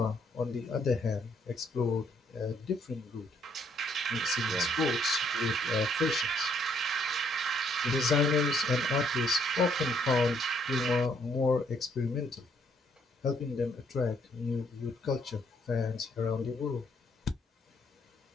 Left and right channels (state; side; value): normal; both; correlation 0.68